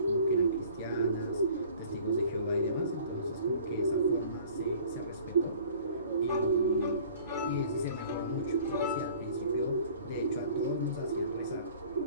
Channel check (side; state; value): both; inverted; correlation -0.50